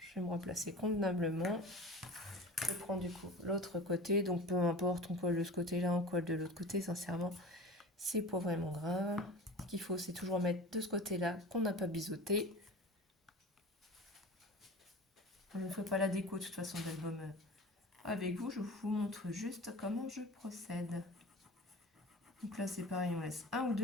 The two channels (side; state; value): both; normal; correlation 0.36